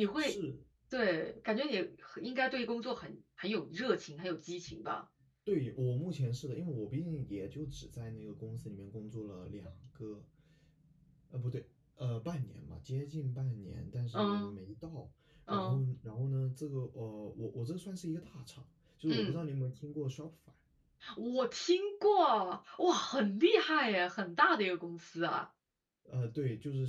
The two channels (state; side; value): identical; both; correlation 1.00